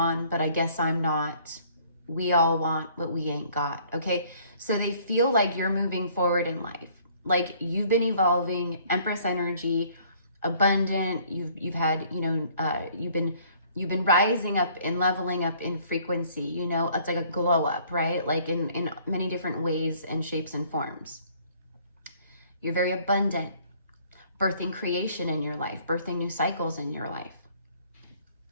but I guess I'm not. We all want what we ain't got, okay? So they feel like you're moving forward in life. Like you've been evolving, Empress energy, abundant. You've had, you know, you've been rising up and leveling up in frequency, you know. It's like a glow up, right? Like in many different ways and shapes and forms. You're very abundant, birthing creation in your life, birthing new cycles in your life.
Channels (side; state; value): both; inverted; correlation -0.59